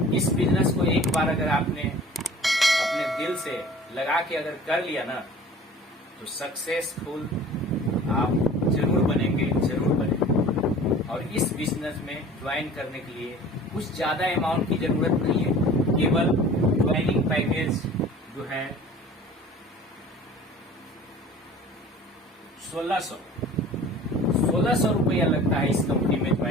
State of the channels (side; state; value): both; normal; correlation 0.44